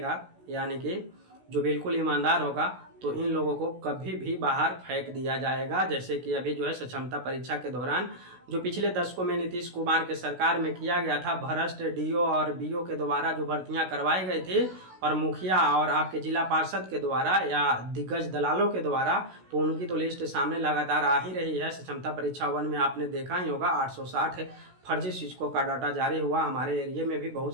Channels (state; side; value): late; left; 16 ms